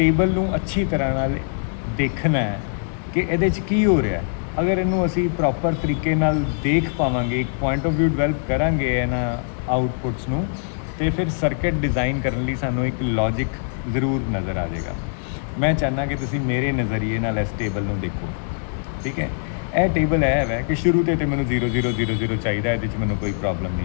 नूं अच्छी तरह नाल देखना है कि ये की हो रहा है। अगर इनू असी प्रॉपर तरीके नाल देख पावांगे, एक पॉइंट ऑफ व्यू डिवेल्प करांगे इन्हां आउटपुट्स नूं, तो फिर सर्किट डिज़ाइन करने लई सानूं एक लॉजिक जरूर नज़र आ जाएगा। मैं चाहना कि तुसीं मेरे नज़रिए नाल इस टेबल नूं देखो। ठीक है, यह टेबल है कि शुरू तो मैनूं 0 0 0 0 चाहिए, ये मैनूं कोई प्रॉब्लम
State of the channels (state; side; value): silent; right; digital silence